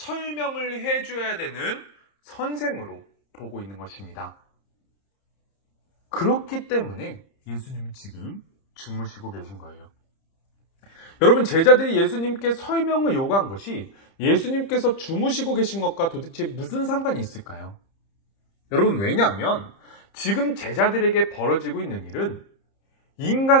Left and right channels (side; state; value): right; late; 30 ms